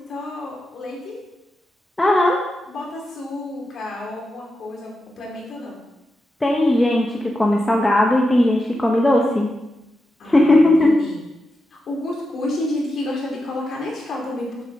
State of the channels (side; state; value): both; normal; correlation 0.88